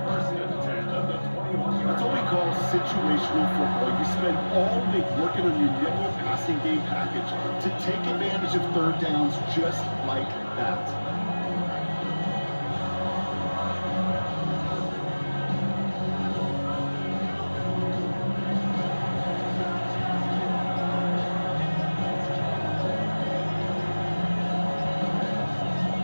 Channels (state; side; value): inverted; both; correlation -1.00